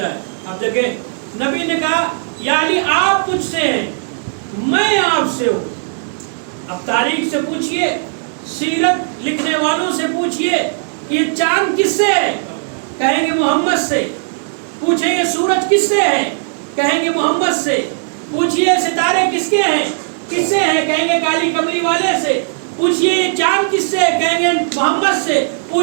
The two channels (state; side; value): silent; left; digital silence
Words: اب دیکھیں نبی نے کہا یا علی آپ مجھ سے ہیں، میں آپ سے ہوں. اب تاریخ سے پوچھئے، سیرت لکھنے والوں سے پوچھئے کہ یہ چاند کس سے ہے، کہیں گے محمد سے. پوچھیں یہ سورج کس سے ہے، کہیں گے محمد سے. پوچھئے ستارے کس کے ہیں، کس سے ہیں، کہیں گے کالی کملی والے سے. پوچھئے یہ چاند کس سے ہے، کہیں گے محمد سے.